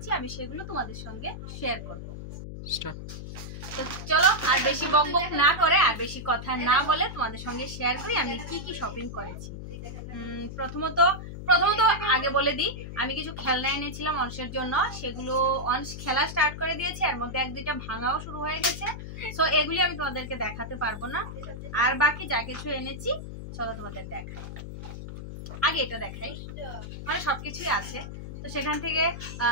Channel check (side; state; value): left; noise; hum, 9 dB below the sound